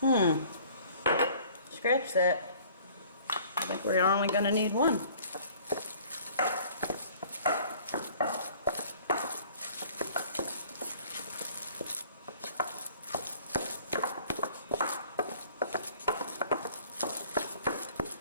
Scratch that. I think we're only going to need 1.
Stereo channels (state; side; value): inverted; both; correlation -0.52